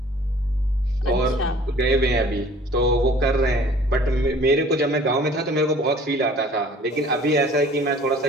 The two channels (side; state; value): both; normal; correlation 0.51